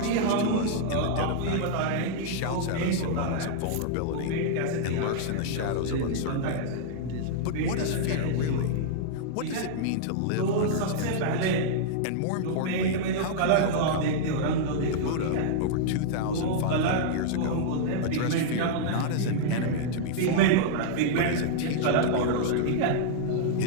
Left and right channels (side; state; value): both; different; correlation -0.01